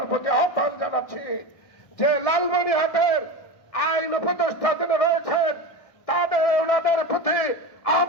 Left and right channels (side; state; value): right; late; 1.7 ms